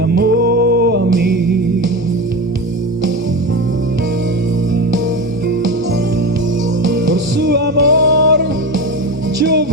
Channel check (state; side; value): normal; both; correlation 0.23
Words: a mí. Por su amor yo